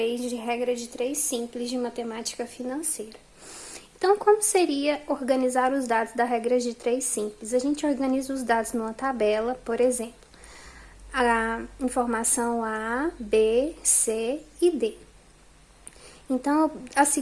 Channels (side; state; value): both; identical; correlation 1.00